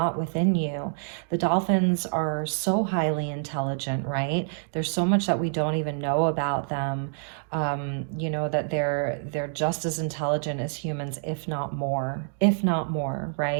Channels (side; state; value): left; silent; digital silence